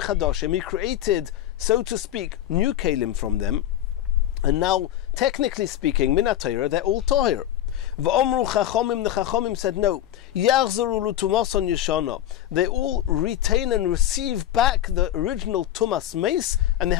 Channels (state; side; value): quieter; right; 12.1 dB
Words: chadashim, he created, so to speak, new kalim from them. And now, technically speaking, min ha-Torah, they're all toher. V'omru chachomim, the chachomim said no. Yachzaru l'tumason yeshana. They all retain and receive back the original tumas meis, and they